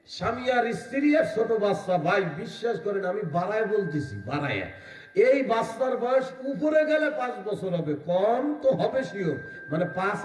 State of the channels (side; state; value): both; identical; correlation 1.00